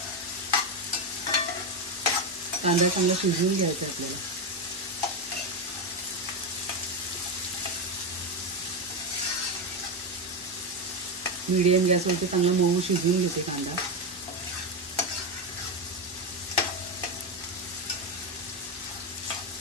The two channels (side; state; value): both; normal; correlation 0.11